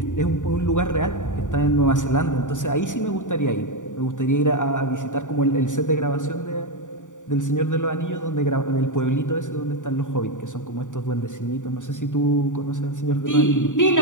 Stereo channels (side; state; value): right; late; 0.86 ms